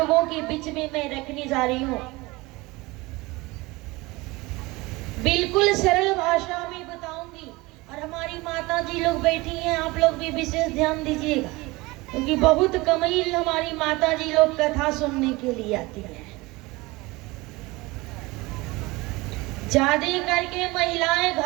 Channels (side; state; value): left; quieter; 22.4 dB